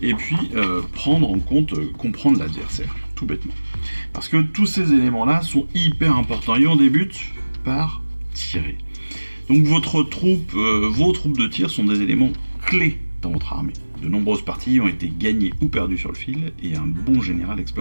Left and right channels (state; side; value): inverted; both; correlation -1.00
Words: et puis prendre en compte, comprendre l'adversaire, tout bêtement. Parce que tous ces éléments-là sont hyper importants. Et on débute par tirer. Donc vos troupes de tir sont des éléments clés dans votre armée. De nombreuses parties ont été gagnées ou perdues sur le fil, et un bon général